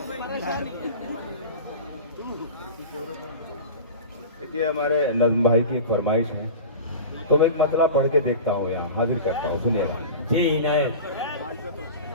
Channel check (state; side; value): inverted; both; correlation -0.33